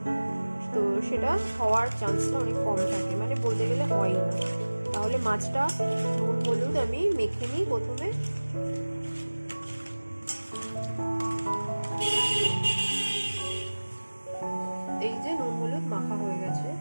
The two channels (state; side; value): inverted; both; correlation -1.00